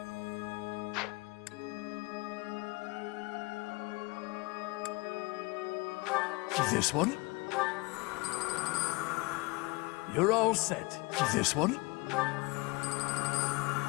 This one? You're all set. This one?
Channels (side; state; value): right; quieter; 24.8 dB